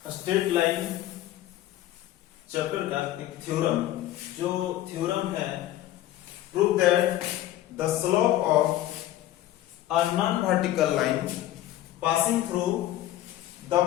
स्ट्रेट लाइन चैप्टर का एक थ्योरम। जो थ्योरम है prove that the slope of a non vertical line passing through the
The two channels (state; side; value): quieter; right; 13.8 dB